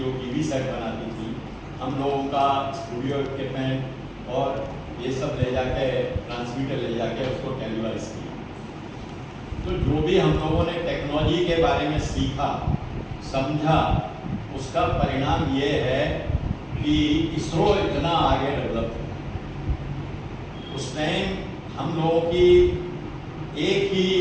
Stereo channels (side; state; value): both; identical; correlation 1.00